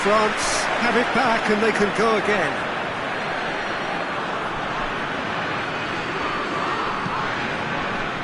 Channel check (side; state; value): both; identical; correlation 1.00